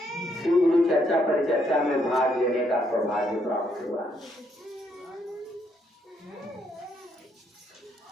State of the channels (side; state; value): both; normal; correlation 0.73